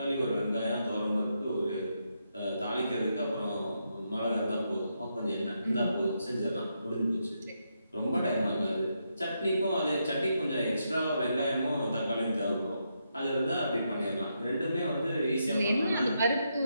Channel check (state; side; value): inverted; both; correlation -0.81